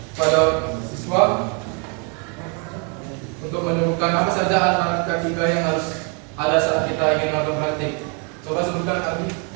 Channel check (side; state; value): left; quieter; 36.2 dB